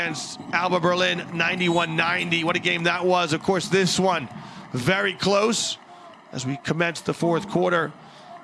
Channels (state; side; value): identical; both; correlation 1.00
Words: Alba Berlin, 91-90. What a game that was. Of course, this one very close as we commence the 4th quarter.